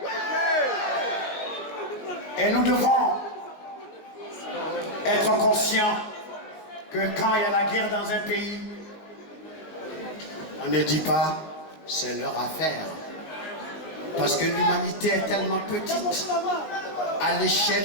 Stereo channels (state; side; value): late; right; 19 ms